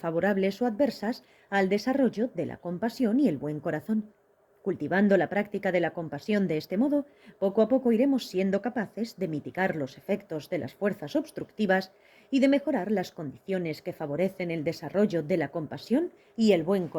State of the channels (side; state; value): both; identical; correlation 1.00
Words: o adversas al desarrollo de la compasión y el buen corazón. Cultivando la práctica de la compasión de este modo, poco a poco iremos siendo capaces de mitigar los efectos de las fuerzas obstructivas y de mejorar las condiciones que favorecen el desarrollo de la compasión y el buen